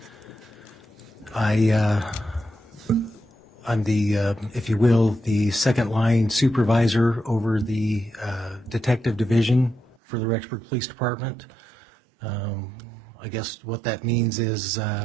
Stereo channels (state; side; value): drops out; left; at 10.0 s